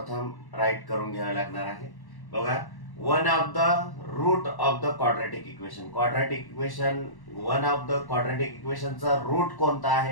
राईट करून घ्यावी लागणार आहे. बघा, one of the root of the quadratic equation. Quadratic equation, one of the quadratic इक्वेशनचा रूट कोणता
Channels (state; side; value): late; right; 1.1 ms